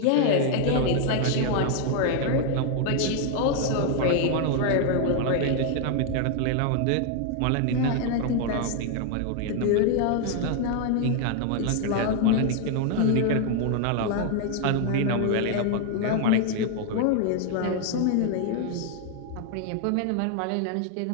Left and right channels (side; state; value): both; different; correlation 0.00